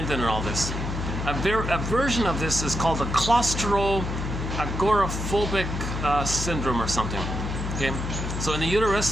and all this. A version of this is called the claustro-agoraphobic syndrome or something. Okay, so in the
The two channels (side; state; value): left; noise; hum, 4 dB below the sound